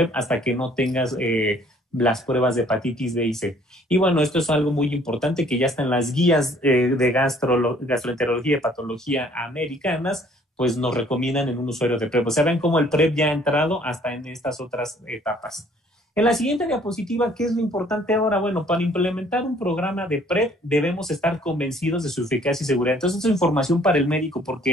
hasta que no tengas las pruebas de hepatitis B y C. Y bueno, esto es algo muy importante que ya está en las guías de gastroenterología y patología americanas, pues nos recomiendan en un usuario de PrEP. O sea, ven cómo el PrEP ya ha entrado hasta en estas otras etapas. En la siguiente diapositiva, ¿qué es lo importante ahora? Bueno, para implementar un programa de PrEP debemos estar convencidos de su eficacia y seguridad. Entonces, esto es información para el médico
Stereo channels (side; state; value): both; normal; correlation 0.59